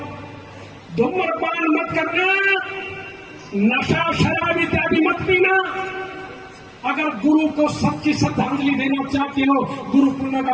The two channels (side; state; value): both; identical; correlation 1.00